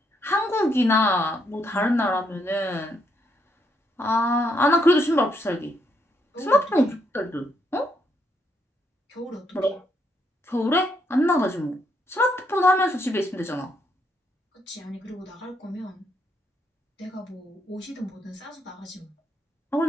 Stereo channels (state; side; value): normal; both; correlation 0.75